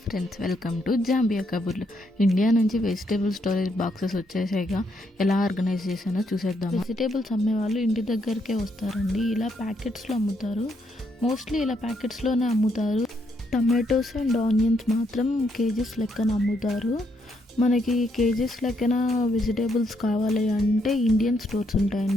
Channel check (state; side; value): normal; both; correlation 0.76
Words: friends, welcome to Zambia కబుర్లు. India నుంచి vegetable storage boxes వచ్చేసాయిగా. ఎలా ఆర్గనైజ్ చేశానో చూసేద్దాం. వెజిటేబుల్స్ అమ్మే వాళ్ళు ఇంటి దగ్గరికే వస్తారండి. ఇలా ప్యాకెట్స్లో అమ్ముతారు. మోస్ట్లీ ఇలా ప్యాకెట్స్లోనే అమ్ముతారు. టమాటోస్ అండ్ ఆనియన్స్ మాత్రం కేజీస్ లెక్కన అమ్ముతారు. మనకి కేజీస్ లెక్కన వెజిటేబుల్స్ కావాలి అంటే ఇండియన్ స్టోర్స్